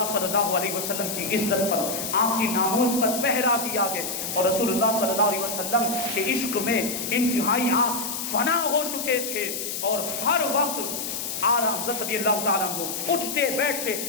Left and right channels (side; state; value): left; noise; hiss, 4 dB below the sound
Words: صلی اللہ علیہ وسلم کی عزت پر، آپ کی ناموس پر پہرا دیا گیا، اور رسول اللہ صلی اللہ علیہ وسلم کے عشق میں انتہائی آپ فنا ہو چکے تھے، اور ہر وقت اعلیٰ حضرت رضی اللہ تعالیٰ عنہ اٹھتے بیٹھتے